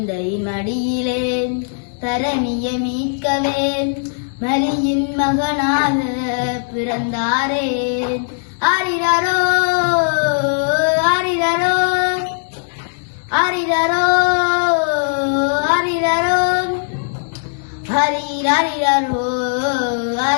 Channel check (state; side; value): silent; right; digital silence